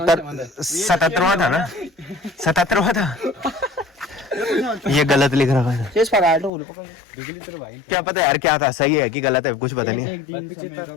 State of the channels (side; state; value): right; drops out; at 6.5 s